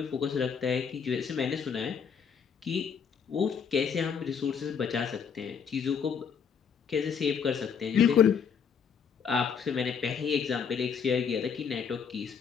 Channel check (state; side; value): quieter; right; 6.8 dB